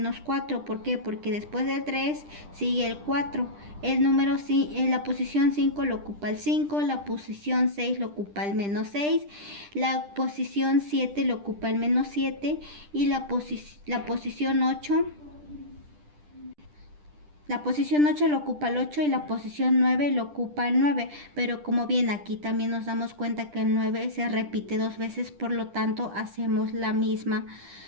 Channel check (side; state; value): left; late; 10 ms